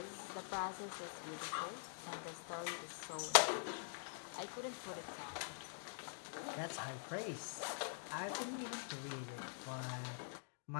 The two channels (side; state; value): right; silent; digital silence